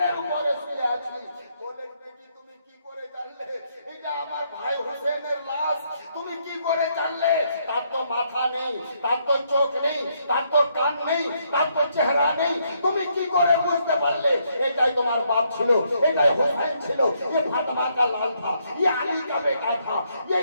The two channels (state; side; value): inverted; both; correlation -0.74